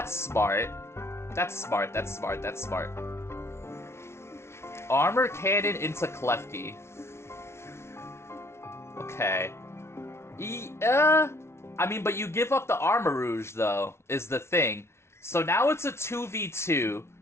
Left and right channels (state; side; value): late; right; 0.13 ms